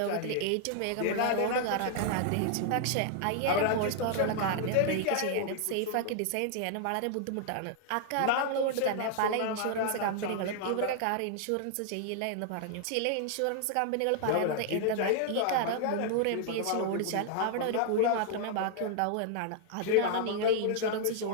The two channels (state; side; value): different; both; correlation 0.00